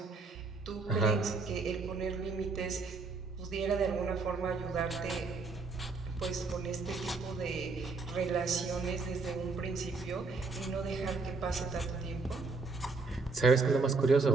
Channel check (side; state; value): left; quieter; 4.0 dB